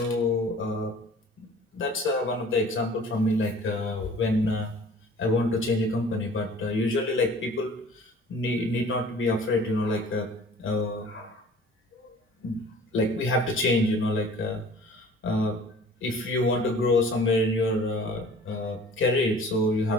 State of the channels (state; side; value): normal; both; correlation 0.48